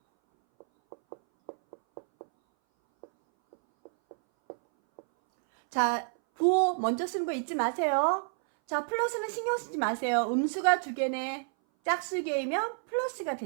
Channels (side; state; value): left; silent; 58 dB below the other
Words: 자, 부호 먼저 쓰는 거 잊지 마세요. 자, 플러스는 신경 쓰지 마세요. 음수가 2개네. 짝수개이면 플러스가